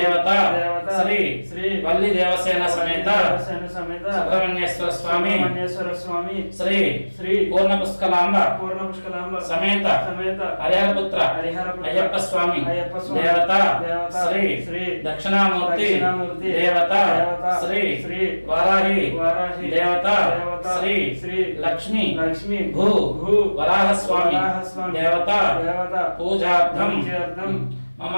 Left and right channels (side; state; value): both; inverted; correlation -1.00